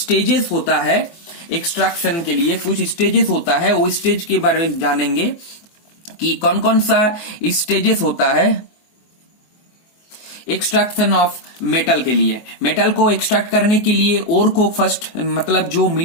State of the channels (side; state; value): right; late; 24 ms